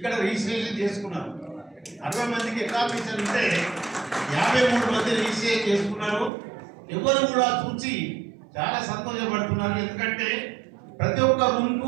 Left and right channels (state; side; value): drops out; left; at 6.3 s